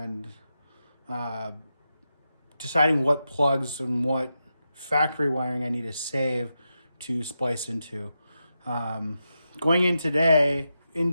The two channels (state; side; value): inverted; both; correlation -0.88